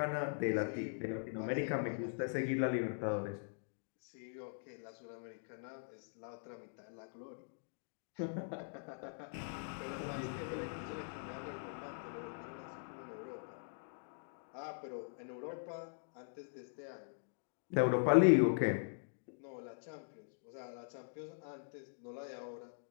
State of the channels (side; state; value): right; silent; digital silence